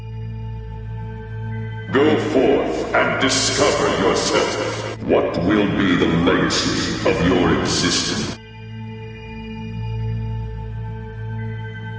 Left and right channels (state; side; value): identical; both; correlation 1.00